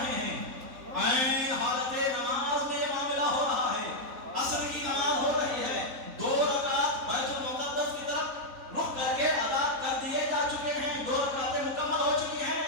ہیں، عین حالت نماز میں یہ معاملہ ہو رہا ہے، عصر کی نماز ہو رہی ہے، 2 رکعت بیت المقدس کی طرف رخ کر کے ادا کر دیے جا چکے ہیں، 2 رکعتیں مکمل ہو چکی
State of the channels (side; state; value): left; late; 3.8 ms